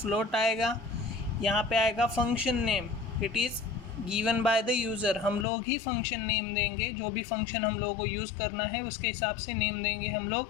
आएगा। यहाँ पे आएगा function name, it is given by the user. हम लोग ही फंक्शन नेम देंगे, जो भी फंक्शन हम लोगों को यूज़ करना है उसके हिसाब से नेम देंगे हम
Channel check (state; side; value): drops out; right; at 5.5 s